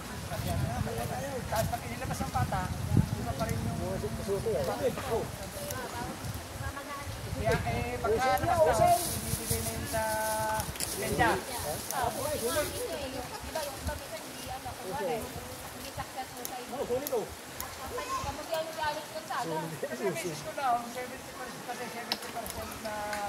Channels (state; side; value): identical; both; correlation 1.00